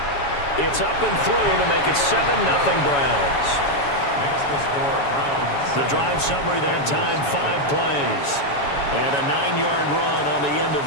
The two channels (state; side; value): late; right; 7.1 ms